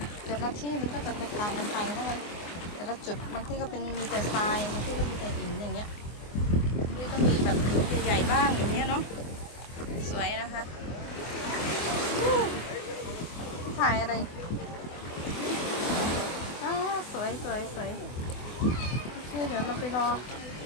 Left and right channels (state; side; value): late; right; 24 ms